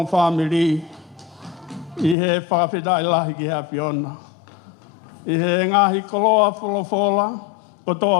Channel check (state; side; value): drops out; right; at 2.1 s